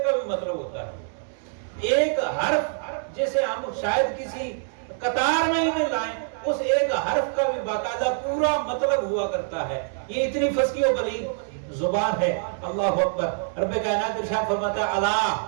کا بھی مطلب ہوتا ہے. ایک حرف جسے ہم شاید کسی قطار میں ہی نہیں لائیں, اس ایک حرف کا بھی باقاعدہ پورا مطلب ہوا کرتا ہے. یہ اتنی فصیح و بلیغ زبان ہے. اللہ اکبر. رب کائنات ارشاد فرماتا ہے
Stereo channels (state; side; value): silent; left; 62 dB below the other